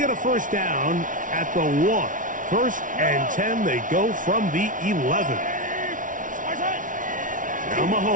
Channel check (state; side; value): late; left; 0.38 ms